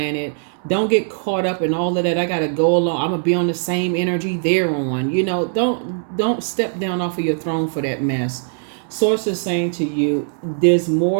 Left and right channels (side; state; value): left; silent; 66 dB below the other